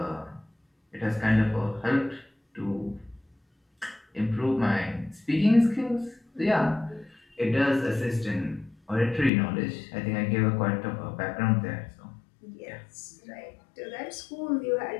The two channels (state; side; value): drops out; right; at 9.3 s